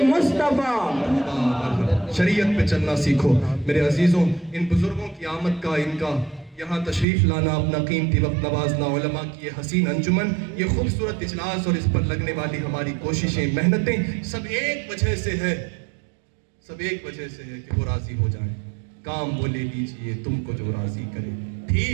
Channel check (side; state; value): left; drops out; at 7.1 s